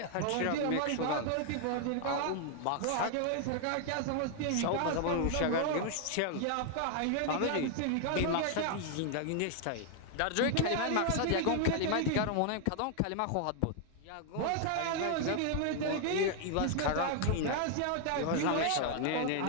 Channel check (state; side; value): different; both; correlation 0.00